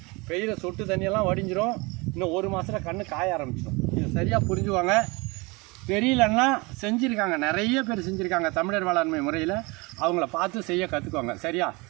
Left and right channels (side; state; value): left; quieter; 26.2 dB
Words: பெய்கிற சொட்டு தண்ணியெல்லாம் வடிஞ்சிரும். இன்னும் 1 மாதத்தில் கண்ணு காய ஆரம்பிச்சிடும். இதை சரியாக புரிஞ்சுவாங்க. தெரியலன்னா செஞ்சுருக்காங்க, நிறைய பேர் செஞ்சுருக்காங்க தமிழர் வேளாண்மை முறையில். அவங்கள பார்த்து செய்ய கற்றுக்குவாங்க. சரியா?